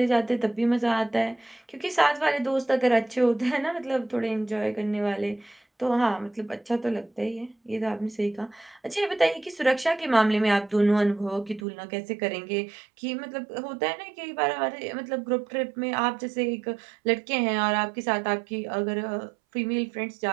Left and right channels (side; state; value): left; drops out; at 11.7 s